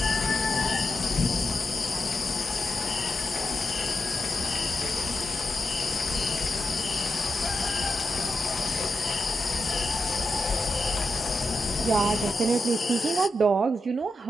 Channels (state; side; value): normal; both; correlation 0.87